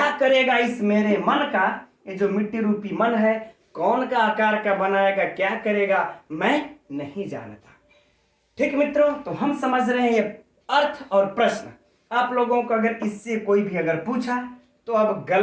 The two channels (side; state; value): both; identical; correlation 1.00